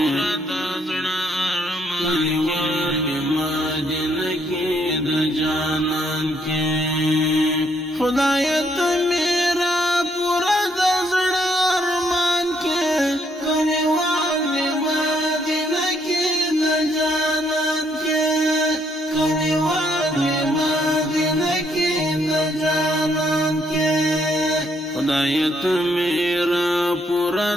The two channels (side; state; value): both; normal; correlation 0.71